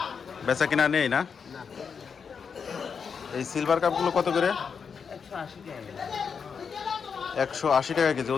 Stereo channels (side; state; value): right; quieter; 6.2 dB